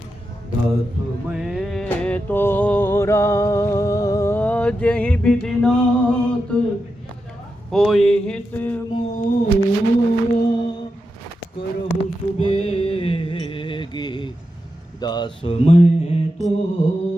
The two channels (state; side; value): normal; both; correlation 0.88